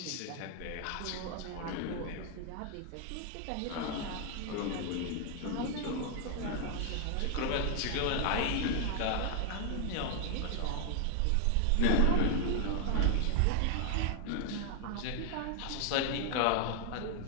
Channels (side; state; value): both; different; correlation 0.00